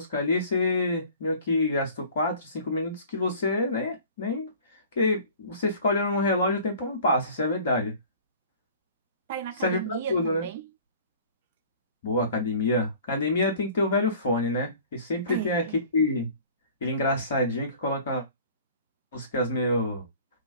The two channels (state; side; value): inverted; both; correlation -0.46